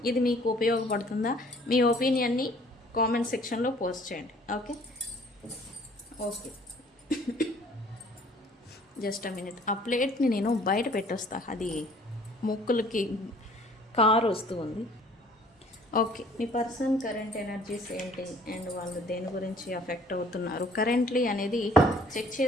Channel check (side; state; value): both; normal; correlation 0.55